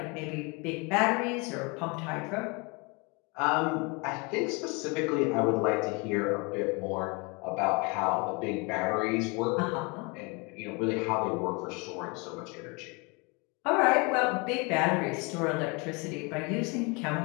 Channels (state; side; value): quieter; right; 29.7 dB